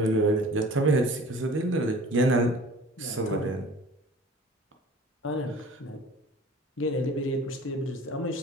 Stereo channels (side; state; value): both; normal; correlation 0.45